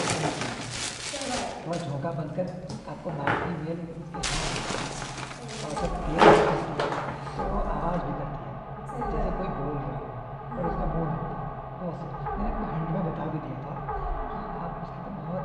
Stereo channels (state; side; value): identical; both; correlation 1.00